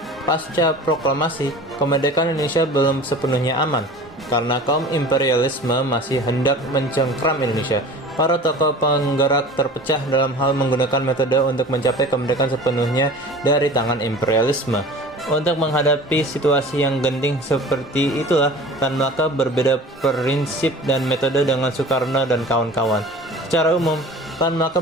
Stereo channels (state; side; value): normal; both; correlation 0.40